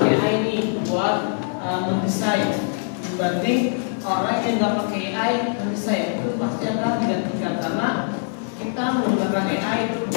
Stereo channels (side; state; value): right; silent; 58 dB below the other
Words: AI ini buat mendesain, dibanding orang yang nggak pakai AI mendesain, itu pasti akan digantikan karena kita menggunakan AI itu